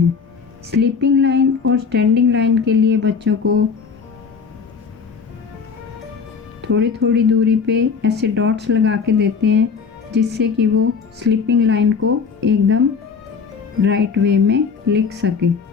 स्लीपिंग लाइन और स्टैंडिंग लाइन के लिए बच्चों को थोड़ी थोड़ी दूरी पे ऐसे डॉट्स लगा के देते हैं जिससे कि वो स्लीपिंग लाइन को एकदम राइट वे में लिख सके।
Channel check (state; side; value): quieter; right; 5.7 dB